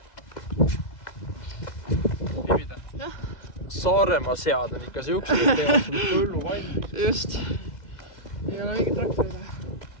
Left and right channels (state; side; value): late; right; 2.0 ms